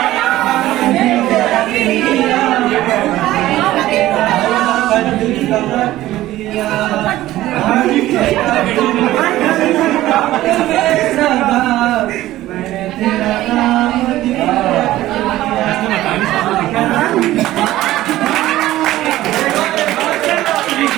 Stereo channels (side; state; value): left; quieter; 15.4 dB